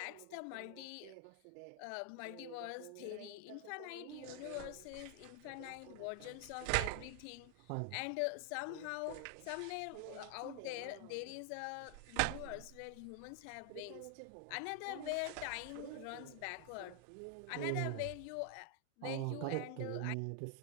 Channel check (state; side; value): different; both; correlation 0.00